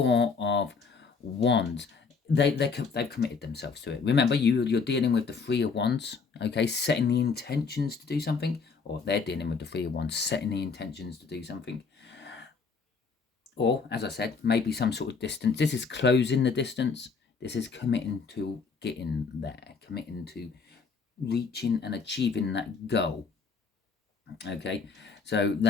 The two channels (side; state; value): right; quieter; 5.0 dB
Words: of Wands. They've committed themselves to it. Remember, you're dealing with the 3 of Wands. Okay, setting the intentions to do something, or they're dealing with the 3 of Wands, setting the intentions to do something. Or, as I said, maybe some sort of distance. This is closing the distance. This is committing to getting there, committing to reaching and achieving that goal. Okay, so